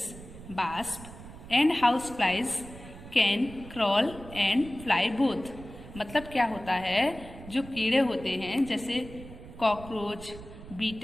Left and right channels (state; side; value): noise; right; rumble, 15 dB below the sound